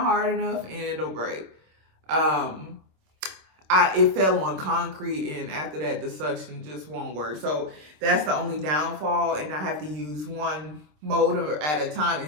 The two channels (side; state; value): left; late; 26 ms